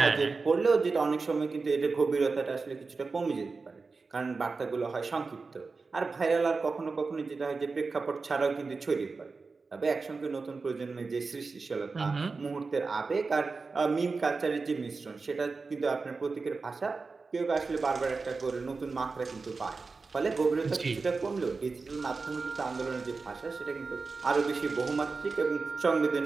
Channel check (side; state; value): left; quieter; 4.2 dB